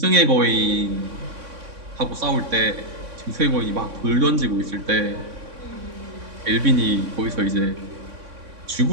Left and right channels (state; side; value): late; left; 3.6 ms